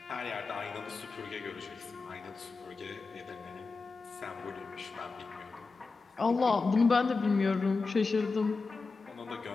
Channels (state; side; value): quieter; right; 4.2 dB